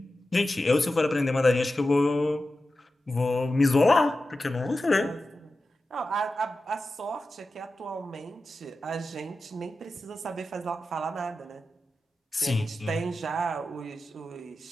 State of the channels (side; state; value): both; normal; correlation 0.93